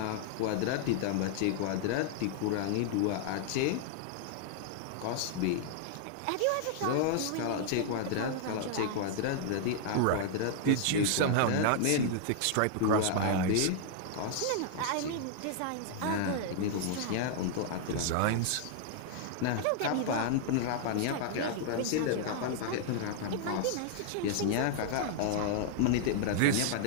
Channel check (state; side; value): different; both; correlation -0.01